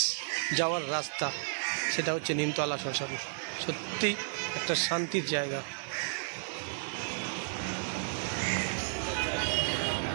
যাওয়ার রাস্তা, সেটা হচ্ছে নিমতলা শ্মশান। সত্যি একটা শান্তির জায়গা।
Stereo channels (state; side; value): silent; left; 56 dB below the other